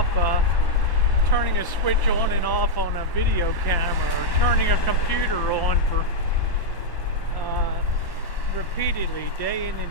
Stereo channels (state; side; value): late; right; 1.0 ms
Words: turning a switch on and off on a video camera, or turning a computer on for repeatedly, day in